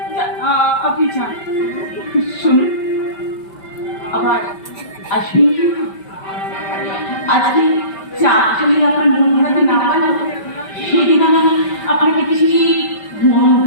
আপনি যান, শুনুন, আবার আসবেন কিন্তু। আজকে চা যদি আপনার মন হাতে না পারল, সেদিন আমি আপনাকে কিছু মন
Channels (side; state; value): right; late; 5.2 ms